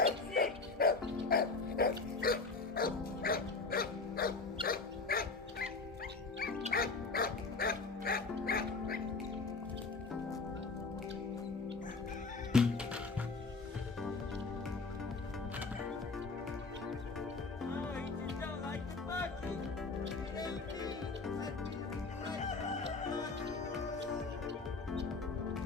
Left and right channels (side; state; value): right; quieter; 4.0 dB